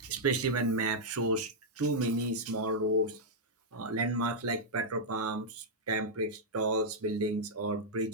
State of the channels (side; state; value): both; normal; correlation -0.07